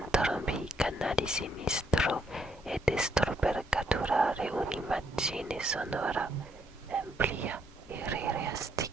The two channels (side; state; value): both; normal; correlation 0.72